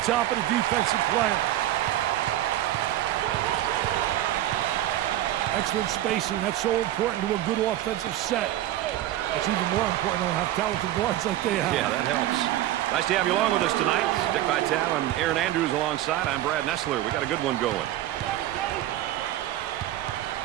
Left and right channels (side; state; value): left; quieter; 13.6 dB